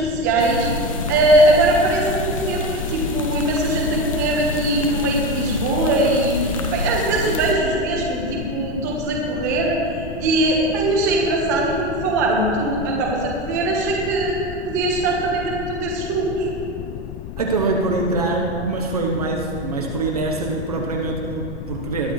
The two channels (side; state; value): left; noise; rumble, 9 dB below the sound